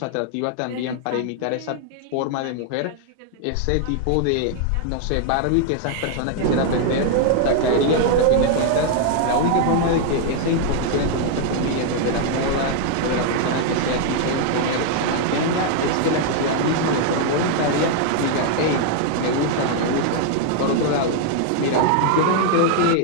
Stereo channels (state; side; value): different; both; correlation 0.00